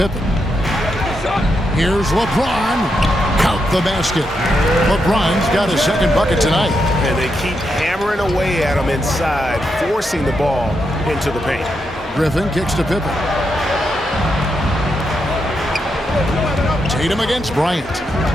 Here's LeBron. Count the basket. LeBron's got his second bucket tonight. And they keep hammering away at him inside, forcing the ball into the paint. Griffin kicks to Pippen. Tatum against Bryant.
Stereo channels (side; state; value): both; normal; correlation 0.83